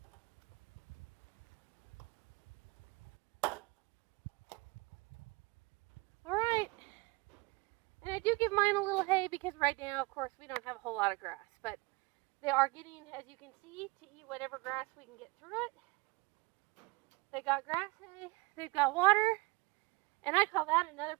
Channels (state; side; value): quieter; left; 25.5 dB